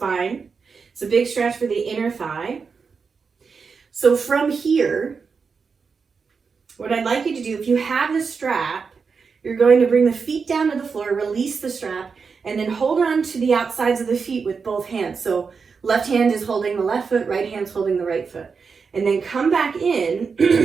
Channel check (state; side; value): quieter; left; 5.4 dB